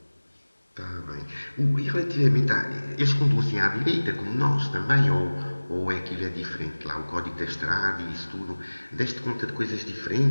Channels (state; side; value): inverted; both; correlation -1.00